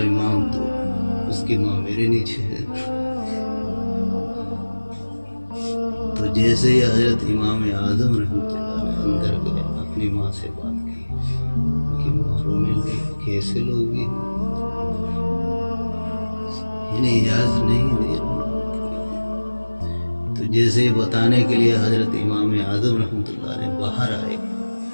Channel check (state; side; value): inverted; both; correlation -1.00